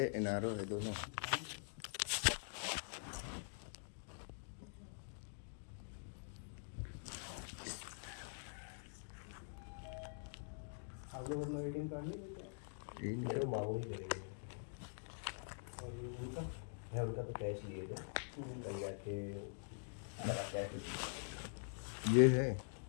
NRO है, दोनों। आप लोग अपना ATM कार्ड नहीं लेते हैं? ये मेरे निकल को मांगू ही करेंगे। और ये उनका? मैं उनका तो कैश लिए थे, कल जाके लगा कैश। ये है,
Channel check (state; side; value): silent; right; digital silence